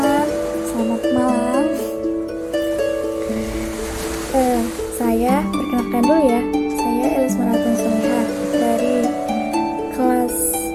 selamat malam. Saya perkenalkan dulu ya. Saya Elis Maratun Solihah dari kelas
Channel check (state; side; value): identical; both; correlation 1.00